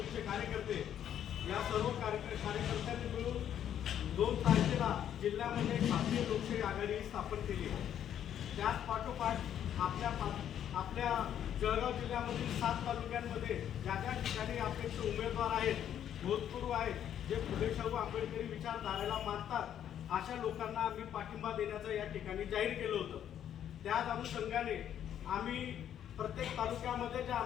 कार्यकर्ते या सर्व कार्यकर्त्यांनी मिळून 2 तारखेला जिल्ह्यामध्ये भारतीय लोकशाही आघाडी स्थापन केली. त्याच पाठोपाठ आपल्या जळगाव जिल्ह्यामधील 7 तालुक्यांमध्ये ज्या ज्या ठिकाणी अपेक्ष उमेदवार आहेत, भूतपूर्व आहेत, जे फुले शाहू आंबेडकरी विचारधारेला मानतात अशा लोकांना आम्ही पाठिंबा देण्याचं या ठिकाणी जाहीर केलं होतं. त्याच अनुषंगाने आम्ही प्रत्येक तालुक्यामध्ये ज्या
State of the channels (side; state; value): right; quieter; 10.0 dB